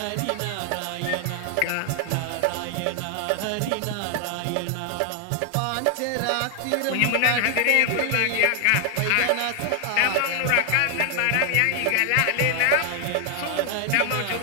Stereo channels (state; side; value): different; both; correlation 0.00